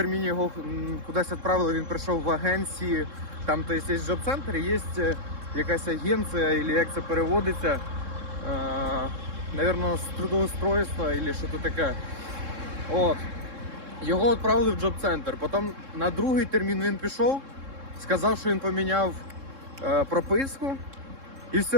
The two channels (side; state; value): left; late; 3.7 ms